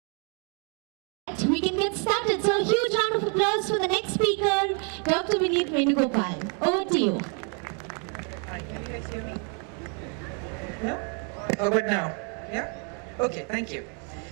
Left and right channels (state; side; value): quieter; left; 38.9 dB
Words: can get started. So a huge round of applause for the next speaker, Dr. Vineet Venugopal. Over to you. Hi, can you guys hear me? No? How about now? Yeah? Okay, thank you.